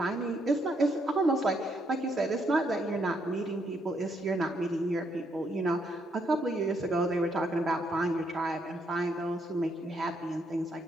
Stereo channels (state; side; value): normal; both; correlation 0.74